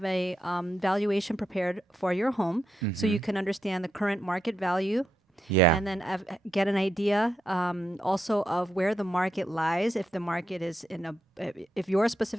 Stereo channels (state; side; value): normal; both; correlation 0.84